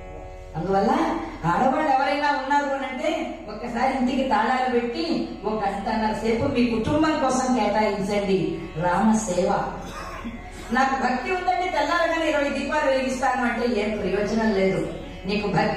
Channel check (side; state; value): both; identical; correlation 1.00